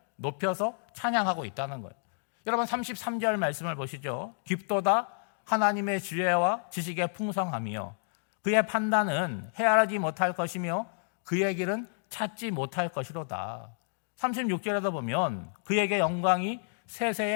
높여서 찬양하고 있다는 거예요. 여러분 33절 말씀을 보시죠. 깊도다 하나님의 지혜와 지식의 풍성함이요 그의 판단은 헤아리지 못할 것이며 그의 길은 찾지 못할 것이로다. 36절에도 보면 그에게 영광이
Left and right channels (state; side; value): silent; right; digital silence